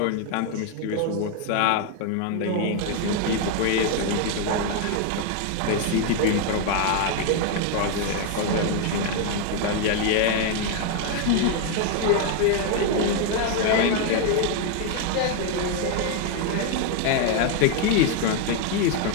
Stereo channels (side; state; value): both; different; correlation 0.00